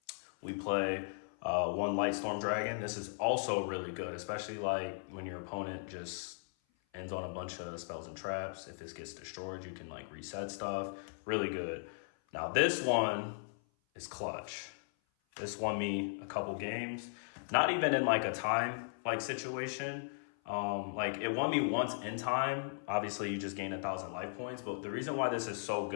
We play 1 Light Storm Dragon. This is also really good, especially like when your opponent just ends on a bunch of spells and traps. If this gets destroyed, you can like reset stuff. Really good. Now this one is clutch. This won me a couple games. Not even in like a time like situation. Like it won me once in time. Obviously you just gain 1,000 life points, but the reason why this is so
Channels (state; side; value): silent; right; 53 dB below the other